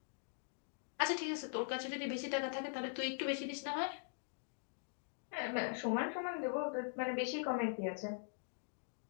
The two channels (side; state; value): right; silent; digital silence